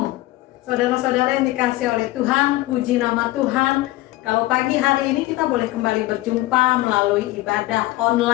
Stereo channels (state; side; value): quieter; right; 17.8 dB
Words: saudara-saudara yang dikasih oleh Tuhan, puji nama Tuhan. Kalau pagi hari ini kita boleh kembali berjumpa melalui ibadah